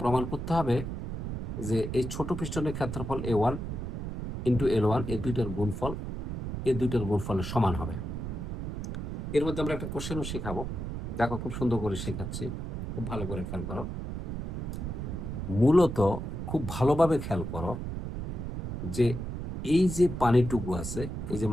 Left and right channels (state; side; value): noise; right; rumble, 5 dB below the sound